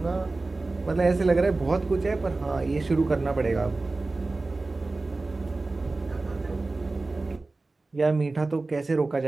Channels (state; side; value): quieter; left; 3.4 dB